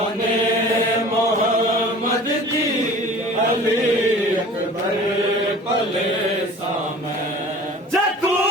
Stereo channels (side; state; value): both; normal; correlation 0.43